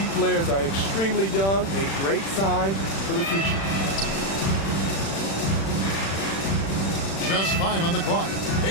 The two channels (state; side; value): late; right; 36 ms